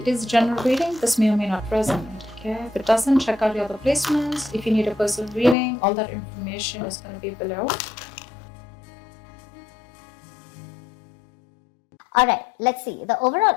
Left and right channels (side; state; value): right; drops out; at 5.6 s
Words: It is general reading. This may or may not resonate. Okay, if it doesn't, check out your other placements. If you need a personal reading, all that information is going to be below. Alright, let's see. The overall